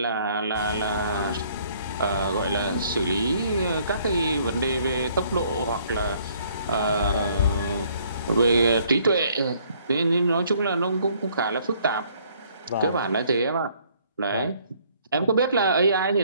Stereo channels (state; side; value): inverted; both; correlation -0.63